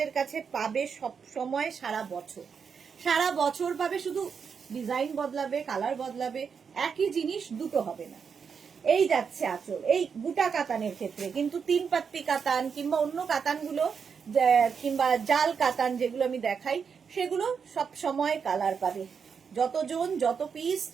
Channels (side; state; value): left; quieter; 6.3 dB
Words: কাছে পাবে সব সময়, সারা বছর, সারা বছর পাবে। শুধু ডিজাইন বদলাবে, কালার বদলাবে, একই জিনিস দুটো হবে না। এই যাচ্ছে আঁচল, এই বুটা কাতানের ক্ষেত্রে কিন্তু 3 পাত্তি কাতান কিংবা অন্য কাতানগুলো কিংবা জাল কাতান যেগুলো আমি দেখাই, সেগুলো সব সময় কালার পাবে, যতজন যত পিস